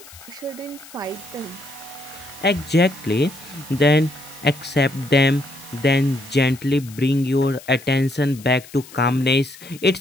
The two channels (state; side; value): noise; left; hiss, 20 dB below the sound